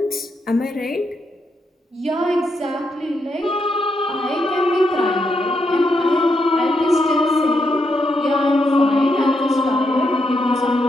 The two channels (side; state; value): both; normal; correlation 0.80